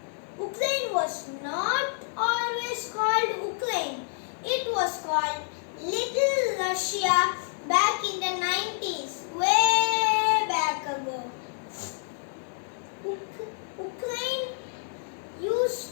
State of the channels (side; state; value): right; silent; 59 dB below the other